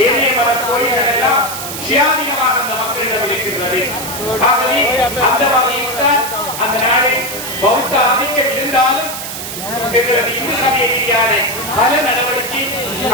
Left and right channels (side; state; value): right; noise; hiss, 7 dB below the sound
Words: ஏனைய மத கோயில்கள் எல்லாம் சுயாதீனமாக அந்த மக்களிடம் இருக்கின்றது. ஆகவே அந்த வகையில் தான் அந்த நாடு பௌத்த ஆதிக்கம் இருந்தாலும் எங்களது இந்து சமய ரீதியான பல நடவடிக்கை